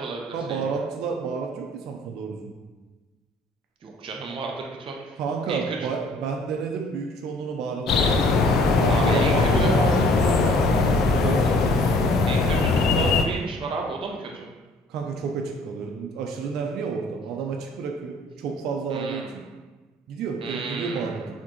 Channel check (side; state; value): both; normal; correlation 0.55